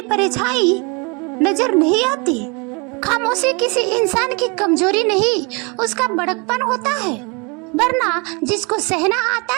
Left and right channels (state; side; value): quieter; left; 30.7 dB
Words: परछाई नजर नहीं आती। खामोशी किसी इंसान की कमजोरी नहीं, उसका बड़कपन होता है। वरना जिसको सहना आता